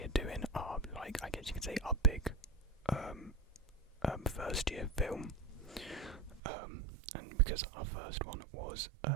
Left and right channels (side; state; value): left; drops out; at 6.4 s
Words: doing our, like, I guess you could say, our big first year film. And because our first one was